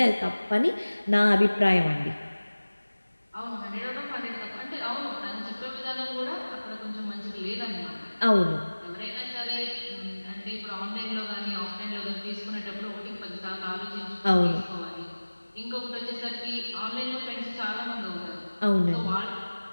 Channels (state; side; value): inverted; both; correlation -1.00